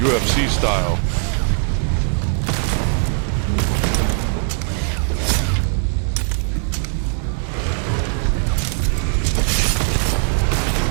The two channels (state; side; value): silent; left; 66 dB below the other